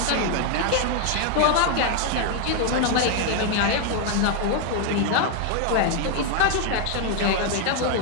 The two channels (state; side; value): different; both; correlation 0.00